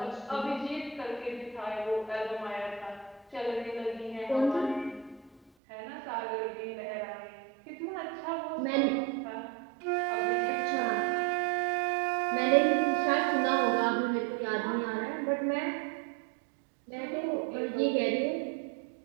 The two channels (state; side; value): drops out; left; at 5.4 s